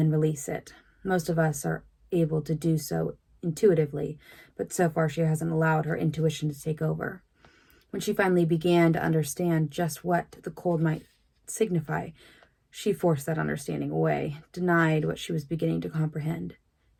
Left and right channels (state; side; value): identical; both; correlation 1.00